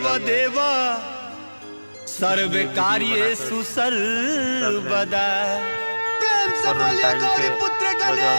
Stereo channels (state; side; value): inverted; both; correlation -1.00